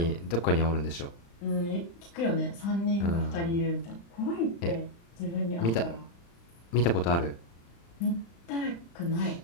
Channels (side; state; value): right; late; 35 ms